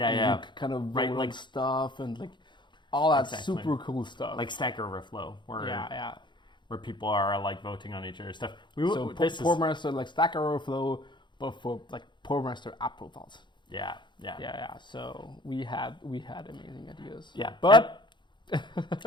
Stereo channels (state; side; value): late; right; 0.22 ms